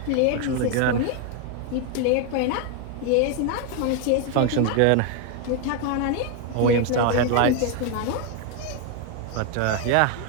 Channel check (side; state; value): both; different; correlation 0.01